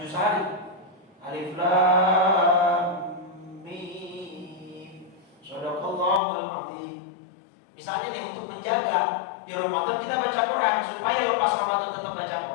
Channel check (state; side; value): drops out; right; at 6.2 s